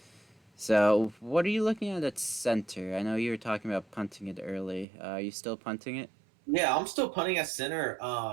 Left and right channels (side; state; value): left; drops out; at 4.9 s